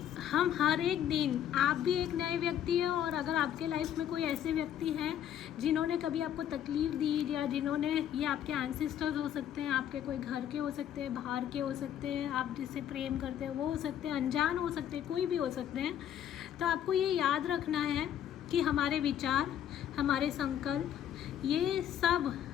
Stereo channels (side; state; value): right; quieter; 10.2 dB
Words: हर एक दिन, आप भी एक नए व्यक्ति हैं, और अगर आपके लाइफ में कोई ऐसे व्यक्ति हैं जिन्होंने कभी आपको तकलीफ़ दी, या जिन्होंने, ये आपके एंसेस्टर्स हो सकते हैं, आपके कोई घर के हो सकते हैं, बाहर के हो सकते हैं, आप जिससे प्रेम करते हैं वो हो सकते हैं, अनजान हो सकते हैं, कोई भी हो सकते हैं। तो आपको ये याद रखना है कि हमारे विचार, हमारे संकल्प, ये सब